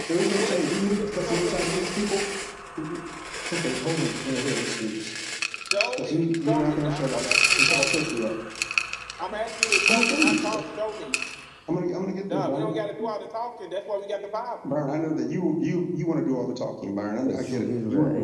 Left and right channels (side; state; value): both; identical; correlation 1.00